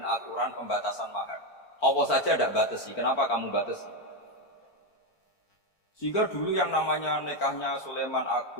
aturan pembatasan mahar. Allah saja tidak batasi, kenapa kamu batasi? Sehingga dulu yang namanya nikahnya Sulaiman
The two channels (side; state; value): right; late; 4.5 ms